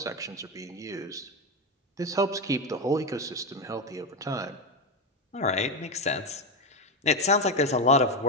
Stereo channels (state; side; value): normal; both; correlation 0.11